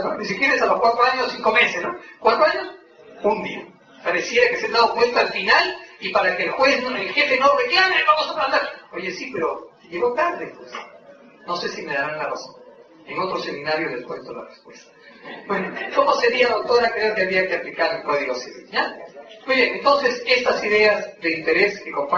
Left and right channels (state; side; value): identical; both; correlation 1.00